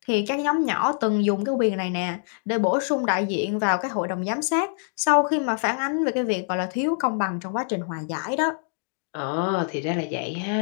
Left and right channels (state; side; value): silent; right; digital silence